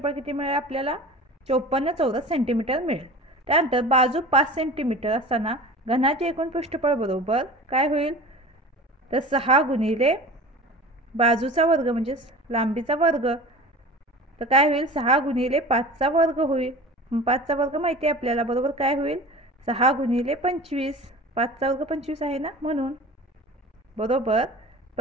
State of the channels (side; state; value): both; normal; correlation 0.37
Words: किती मिळेल आपल्याला, 54 चौरस सेंटीमीटर मिळेल. त्यानंतर बाजू 5 सेंटीमीटर असताना घनाचे एकूण पृष्ठफळ बरोबर काय होईल, तर 6 गुणिले बाजूचा वर्ग म्हणजेच लांबीचा वर्ग. तर काय होईल, 6 गुणिले 5चा वर्ग होईल. 5चा वर्ग माहिती आहे आपल्याला, बरोबर काय होईल, 6 गुणिले 25. 5चा वर्ग 25 आहे ना, म्हणून बरोबर